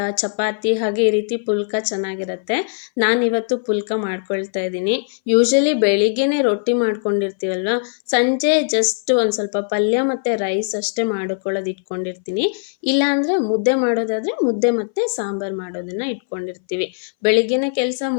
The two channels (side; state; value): right; silent; 62 dB below the other